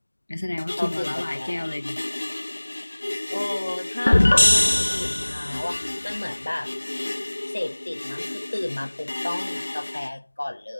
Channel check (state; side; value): inverted; both; correlation -1.00